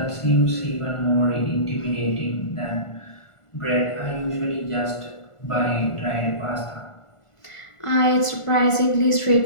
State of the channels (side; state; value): right; late; 1.4 ms